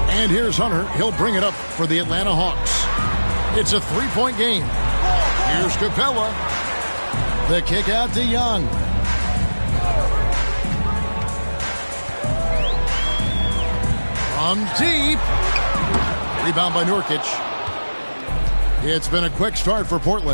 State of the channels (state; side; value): inverted; both; correlation -1.00